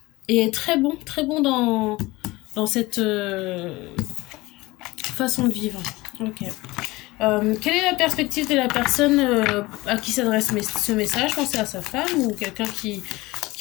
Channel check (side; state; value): right; quieter; 20.8 dB